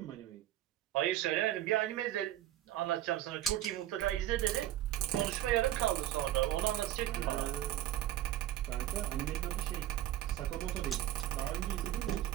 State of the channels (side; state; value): left; quieter; 13.4 dB